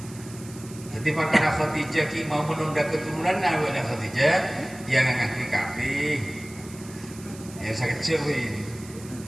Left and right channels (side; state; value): right; noise; hiss, 18 dB below the sound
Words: Jadi perkara Khadijah ki mau menunda keturunan awalnya Khadijah yang ngakui kabeh. Ya sakit cewek.